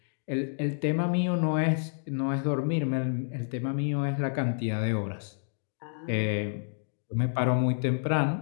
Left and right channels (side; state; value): right; silent; digital silence